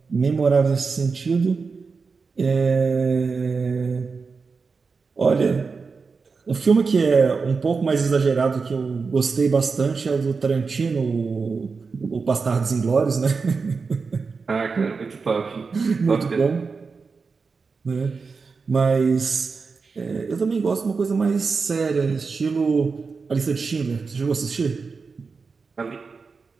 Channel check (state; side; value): quieter; left; 4.8 dB